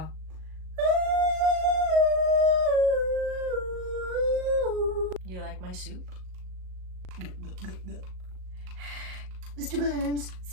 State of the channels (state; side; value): late; left; 38 ms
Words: You like my soup? Mr. Burns,